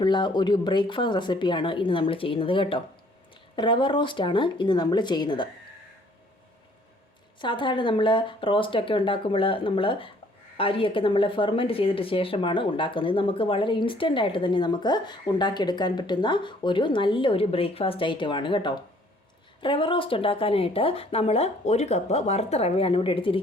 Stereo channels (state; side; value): normal; both; correlation 0.60